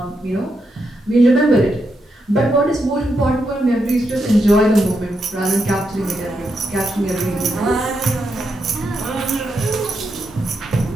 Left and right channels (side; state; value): both; normal; correlation 0.83